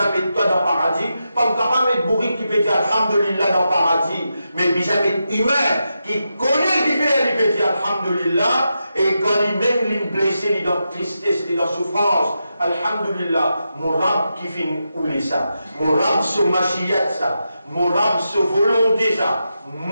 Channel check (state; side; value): inverted; both; correlation -0.87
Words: met toi dans le paradis. Pas capable de mettre bourrique qui peut dire Alhamdulillah dans le paradis. Mais puis ça met humain qui connaît le différent, il peut dire Alhamdulillah. Et quand il même il est blessé, il est dans tristesse, il est dans souffrance. Alhamdulillah, mon rab qui finit ouler ça. Mon rab se machiyat ça. Mon rab se volonté ça.